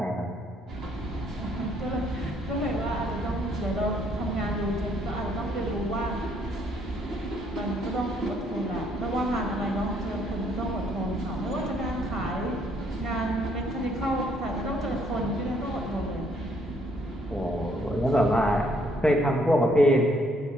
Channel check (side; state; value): both; normal; correlation 0.67